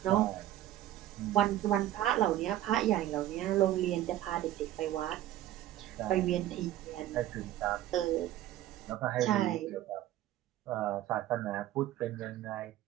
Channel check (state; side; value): quieter; left; 13.4 dB